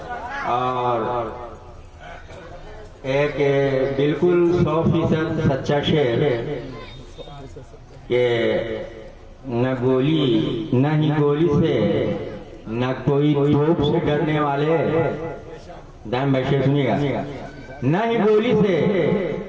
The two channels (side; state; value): both; identical; correlation 1.00